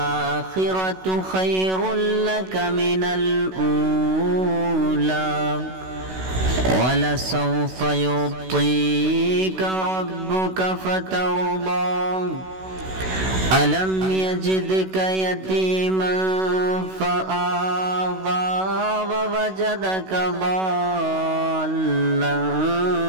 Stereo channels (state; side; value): late; left; 16 ms